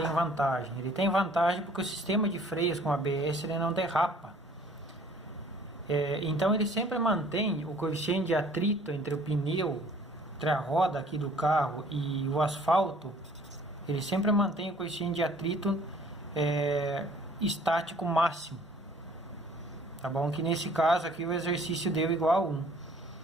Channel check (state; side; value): normal; both; correlation 0.55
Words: vantagem? Ele tem vantagem porque o sistema de freios com ABS ele não derrapa. Então, ele sempre mantém o coeficiente de atrito entre o pneu, entre a roda aqui do carro e o asfalto. Ele sempre mantém o coeficiente de atrito estático máximo, tá bom? Que nesse caso aqui o exercício deu igual a 1.